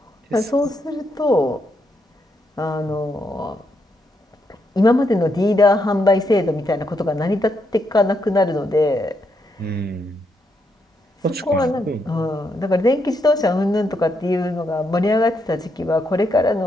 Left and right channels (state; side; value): normal; both; correlation 0.79